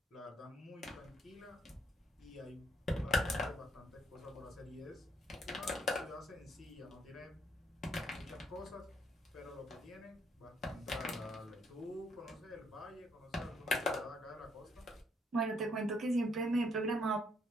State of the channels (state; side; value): normal; both; correlation 0.70